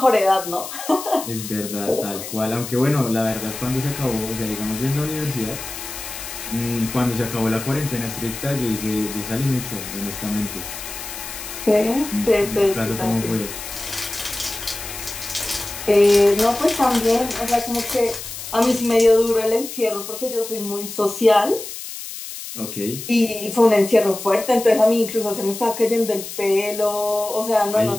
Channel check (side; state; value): left; noise; hiss, 10 dB below the sound